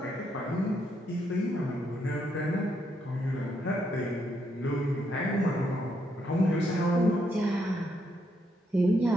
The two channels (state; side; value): normal; both; correlation 0.77